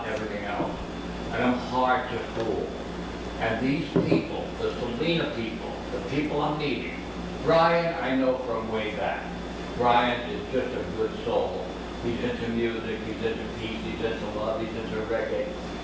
and everything else, and I'm hard to fool. And these people, the Selena people, the people I'm meeting, Brian I know from way back. Brian is just a good soul. He's into music, he's into peace, he's into love, he's into reggae.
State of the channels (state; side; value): identical; both; correlation 1.00